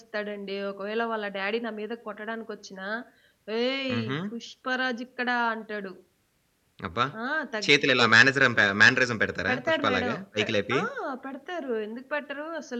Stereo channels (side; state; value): both; identical; correlation 1.00